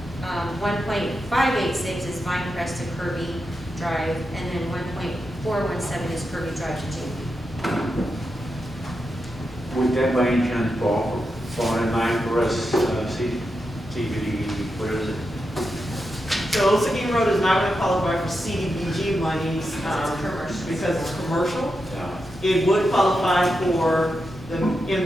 1.586 is Vinecrest to Kirby Drive, and then 1.417 is Kirby Drive to Jamie. Would that by any chance fall in line for us, CBD, what is it? So Old Seguin Road is not going to qualify for CDBG monies because it's commercial. Yeah. It would qualify for the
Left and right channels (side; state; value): both; normal; correlation 0.87